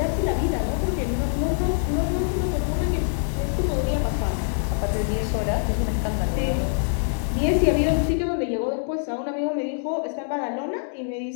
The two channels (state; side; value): silent; right; digital silence